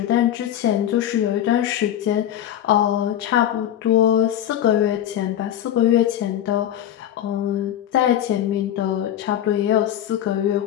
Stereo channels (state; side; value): quieter; right; 11.2 dB